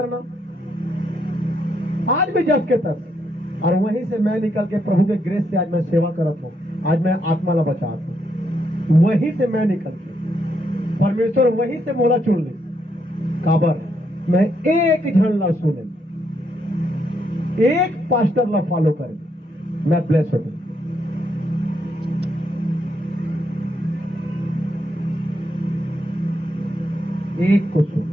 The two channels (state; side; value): normal; both; correlation 0.77